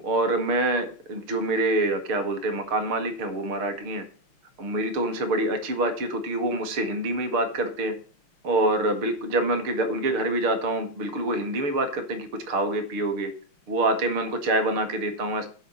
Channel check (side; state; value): left; late; 6.6 ms